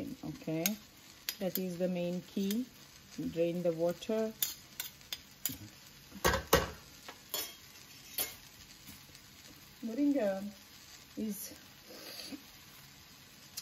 okay? That is the main key. Drain the water. Moringa is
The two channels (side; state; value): both; identical; correlation 1.00